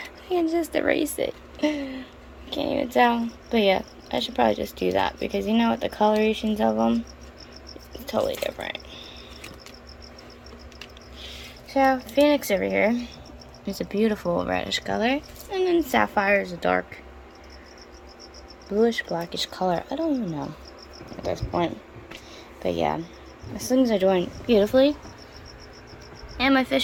can just erase it. Can't even tell. But yeah, I should probably just do that, because you know what, the colorations of them, it's totally different. So, Phoenix over here is a beautiful reddish color, and then Sapphire is a dark bluish blackish color. I don't even know at this point. But yeah, my things are doing beautifully, and my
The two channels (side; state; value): both; identical; correlation 1.00